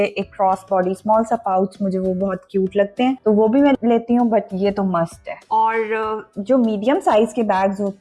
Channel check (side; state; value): both; identical; correlation 1.00